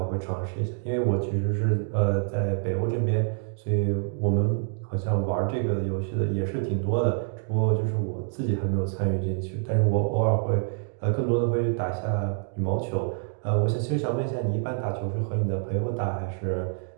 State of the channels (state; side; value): silent; left; 60 dB below the other